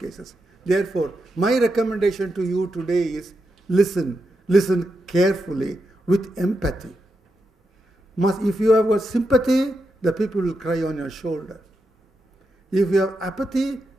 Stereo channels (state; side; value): normal; both; correlation 0.86